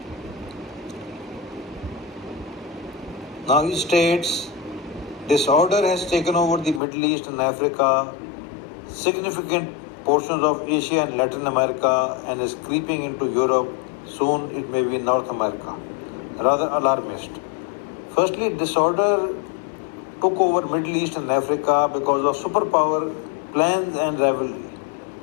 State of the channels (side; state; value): right; drops out; at 6.8 s